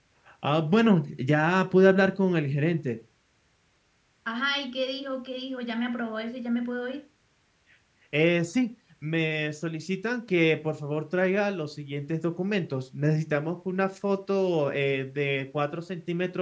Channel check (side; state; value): both; identical; correlation 1.00